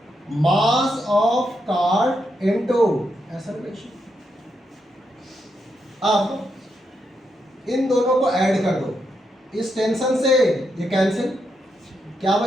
Mass of cart into acceleration. अब इन दोनों को ऐड कर दो, इस टेंशन से ये कैंसिल, क्या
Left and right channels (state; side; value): normal; both; correlation 0.82